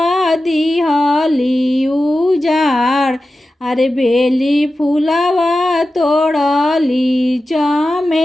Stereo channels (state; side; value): normal; both; correlation 0.93